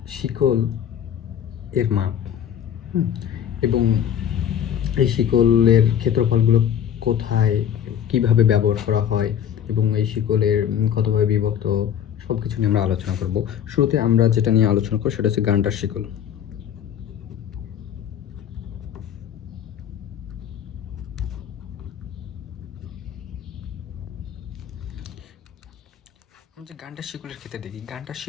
শিকল এর মাপ এবং এই শিকলের ক্ষেত্রফলগুলো কোথায় কিভাবে ব্যবহার করা হয় এবং এই শিকলের কতভাবে বিভক্ত সব কিছু নিয়ে আমরা আলোচনা করব। শুরুতে আমরা যেটা নিয়ে আলোচনা করব সেটা হচ্ছে গান্ডার শিকল। যে গান্ডার শিকলের ক্ষেত্রে দেখি, গান্ডার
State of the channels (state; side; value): quieter; right; 9.3 dB